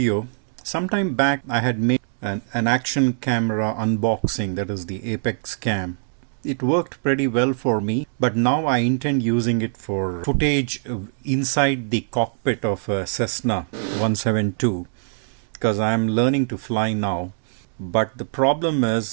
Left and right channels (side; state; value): left; silent; digital silence